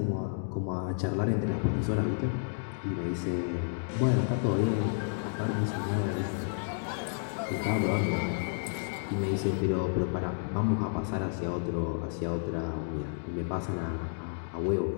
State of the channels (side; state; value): right; silent; digital silence